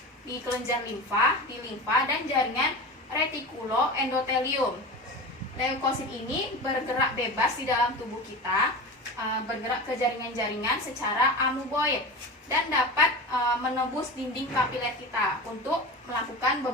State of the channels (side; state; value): both; normal; correlation 0.28